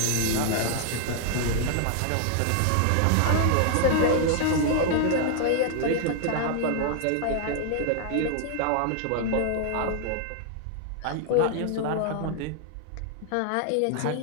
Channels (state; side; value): different; both; correlation -0.01